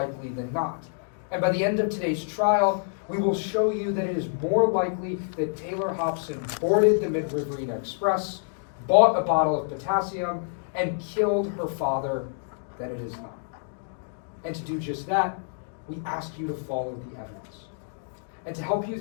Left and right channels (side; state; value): right; silent; digital silence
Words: than not. And by the end of today's trial, we will show you that it is more likely that Taylor Hobson boarded the Mid-Riverina Express, bought a bottle of potassium, and killed her father than it is not. And to do just that, we ask you to follow the evidence. And to help you